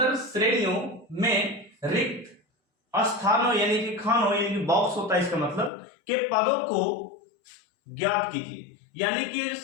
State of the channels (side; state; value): right; drops out; at 5.7 s